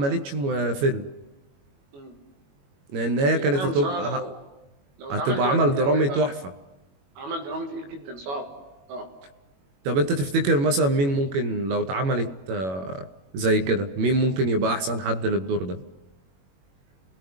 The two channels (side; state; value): left; late; 22 ms